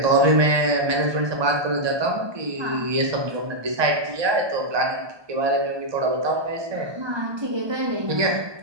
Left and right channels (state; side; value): late; left; 1.2 ms